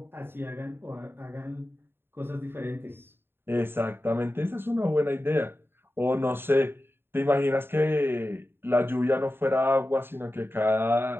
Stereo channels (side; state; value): left; late; 0.11 ms